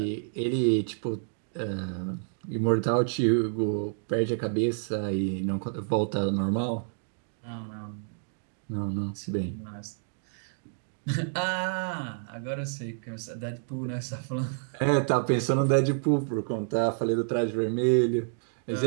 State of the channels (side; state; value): left; silent; digital silence